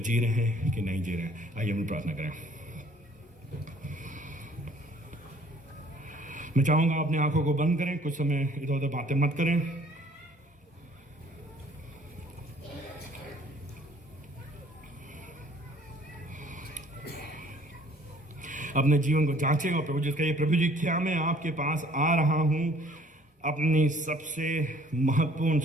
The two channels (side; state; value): both; normal; correlation 0.56